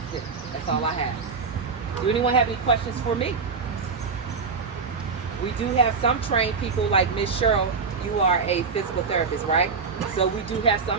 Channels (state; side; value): quieter; left; 5.1 dB